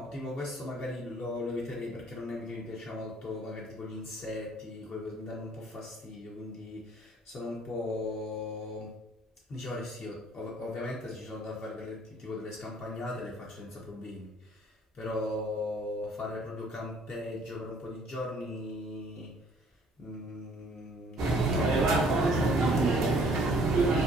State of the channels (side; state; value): both; normal; correlation 0.58